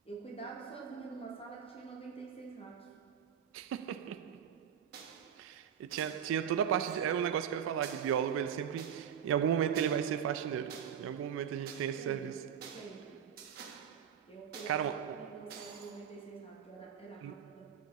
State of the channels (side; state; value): left; quieter; 8.5 dB